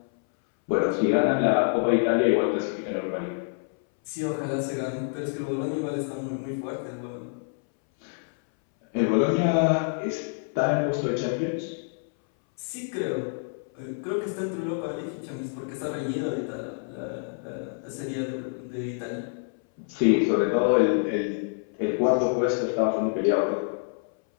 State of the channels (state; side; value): silent; right; 60 dB below the other